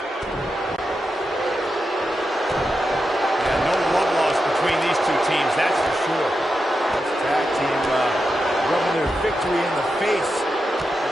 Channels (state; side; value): normal; both; correlation 0.88